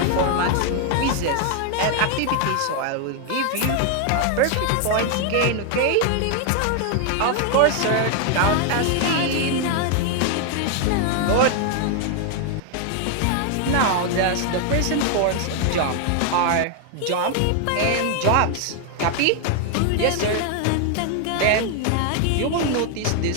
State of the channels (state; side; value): different; both; correlation 0.00